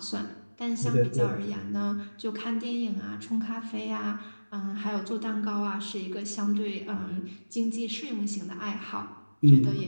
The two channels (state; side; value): inverted; both; correlation -1.00